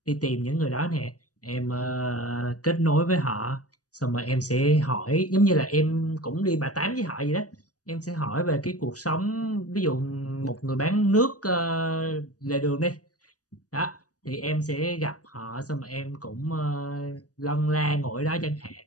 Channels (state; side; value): late; right; 0.67 ms